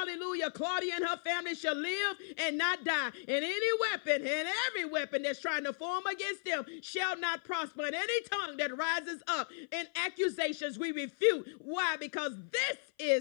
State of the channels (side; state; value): right; silent; 54 dB below the other